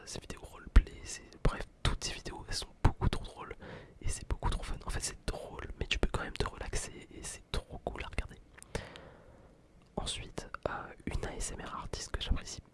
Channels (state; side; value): identical; both; correlation 1.00